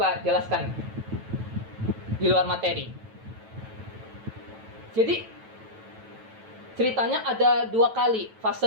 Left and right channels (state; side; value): late; left; 9.1 ms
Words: jelaskan di luar materi. Jadi, ceritanya ada 2 kali